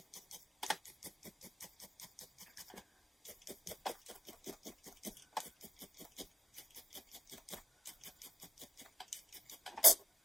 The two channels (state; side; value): normal; both; correlation 0.93